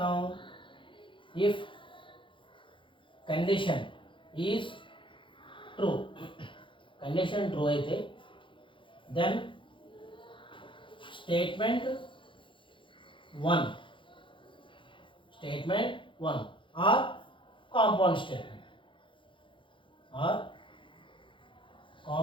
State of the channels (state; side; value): late; right; 0.24 ms